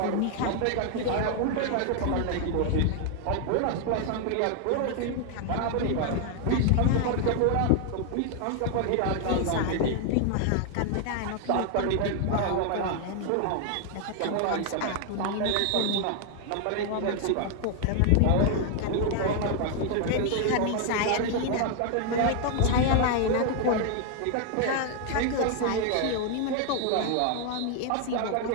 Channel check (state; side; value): different; both; correlation 0.00